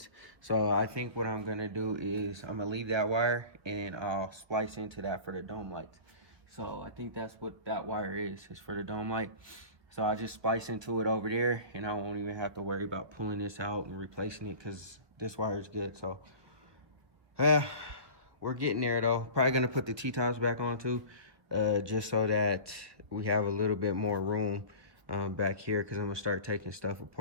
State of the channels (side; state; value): left; late; 1.5 ms